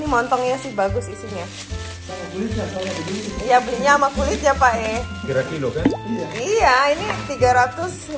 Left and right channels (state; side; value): identical; both; correlation 1.00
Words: montongnya sih bagus isinya. Iya, belinya sama kulitnya Pak Kira kilo kan? Iya, ini